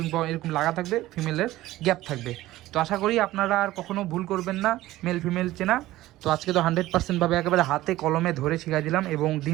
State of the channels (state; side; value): quieter; left; 16.3 dB